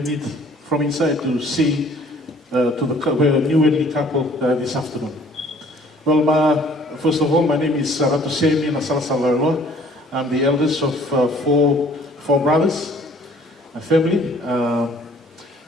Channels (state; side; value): normal; both; correlation 0.56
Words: need from inside to say to the newly couple this afternoon. Well, first of all, my name is Latu Seini and Laweloa. I'm the eldest of four brothers, a family.